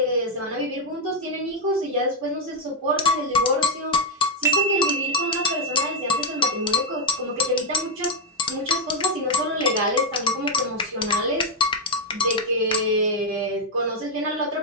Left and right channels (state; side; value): normal; both; correlation 0.02